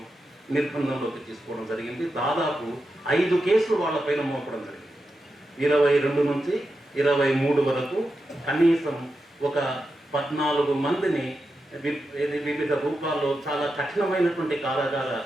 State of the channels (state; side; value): normal; both; correlation 0.89